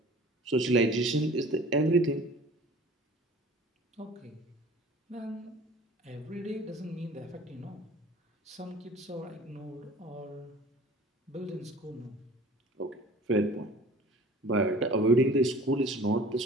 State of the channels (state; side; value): normal; both; correlation 0.46